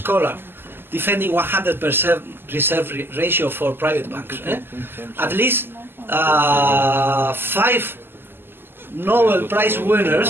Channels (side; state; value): left; late; 0.10 ms